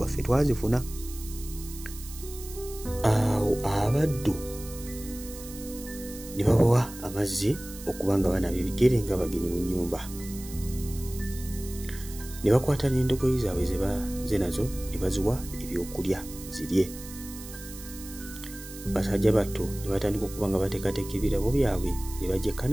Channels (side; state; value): right; noise; hiss, 14 dB below the sound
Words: ffe twazifuna. Awo abaddu ne babawa amazzi okubanga banaaba ebigere nga bagenyi mu nnyumba. Ne bakwata n'endogoyi zaabwe ze nazo ne baziwa ebyokulya zirye. Basajja batto ne batandika okuba nga bateekateeka ebirabo byabwe ne bajja e